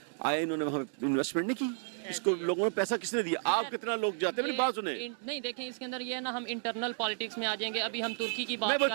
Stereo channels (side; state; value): left; silent; digital silence